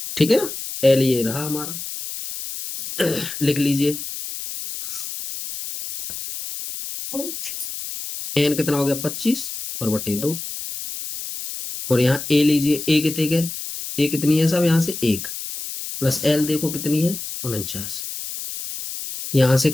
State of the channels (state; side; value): noise; left; hiss, 8 dB below the sound